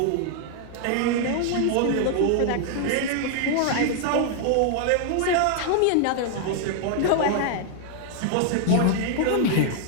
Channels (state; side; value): different; both; correlation 0.00